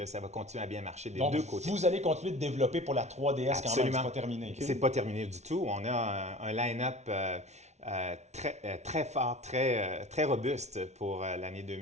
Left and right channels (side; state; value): left; late; 0.32 ms